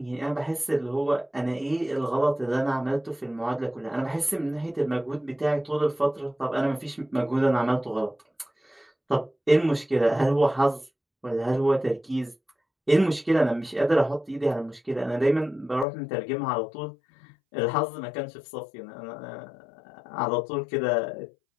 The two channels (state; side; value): drops out; right; at 15.9 s